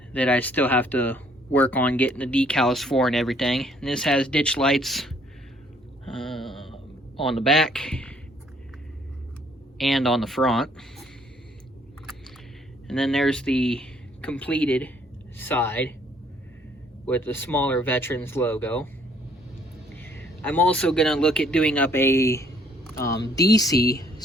that I still have to work on getting the decals for and everything. And this has ditch lights on the back and on the front. And then there's the completed side with the smaller Veterans logo. I'm also going to look at doing up a DC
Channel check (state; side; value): normal; both; correlation 0.63